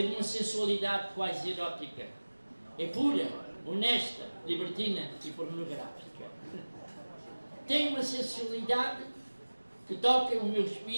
de uma sensualidade quase erótica. É pura, honesta, libertina e pornográfica. Tem uma sensualidade que toca o meu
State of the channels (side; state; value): both; inverted; correlation -1.00